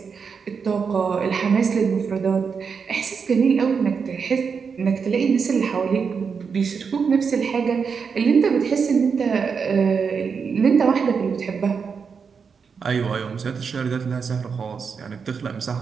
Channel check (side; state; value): left; quieter; 5.9 dB